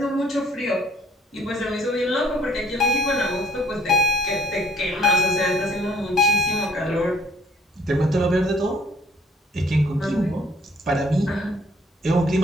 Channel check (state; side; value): normal; both; correlation 0.60